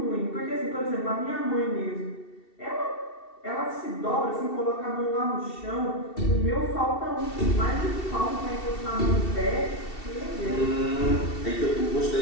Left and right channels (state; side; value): late; right; 2.7 ms